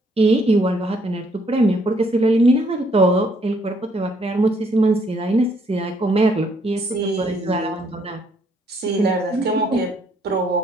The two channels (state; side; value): normal; both; correlation 0.68